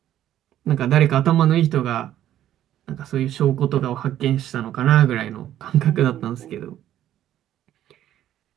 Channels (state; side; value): quieter; left; 12.0 dB